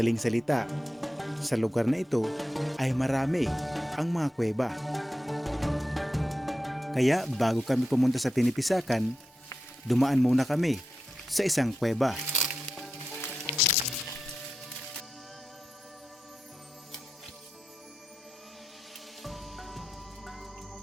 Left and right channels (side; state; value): both; normal; correlation 0.90